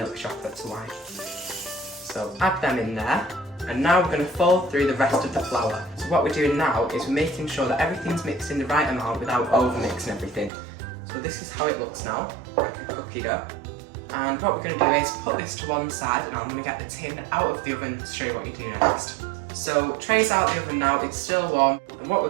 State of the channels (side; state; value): left; drops out; at 10.5 s